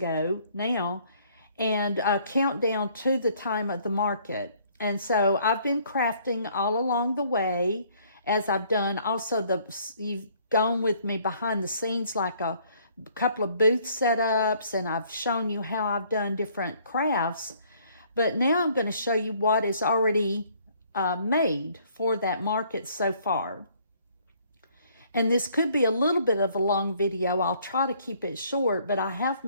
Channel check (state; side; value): inverted; both; correlation -0.62